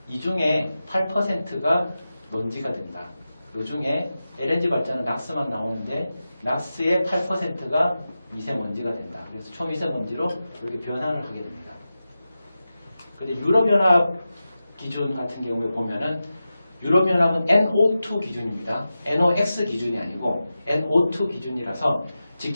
이 중에 8%가 먼지가 된다. 이 중에 LNG 발전은 낙스만 나오는데 낙스의 8%가 미세먼지가 된다. 그래서 초미세먼지로 이렇게 변환을 하게 됩니다. 근데 유럽연합 기준 같은 경우에 보면은 유럽연합은 NO2 기준입니다. NOx 기준이 아니고 NO2 기준이라서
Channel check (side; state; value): both; inverted; correlation -0.93